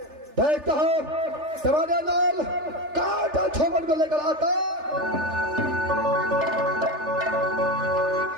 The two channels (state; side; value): late; left; 3.4 ms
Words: देखता हूं टमाटर लाल काटा छोपन को लेकर आता।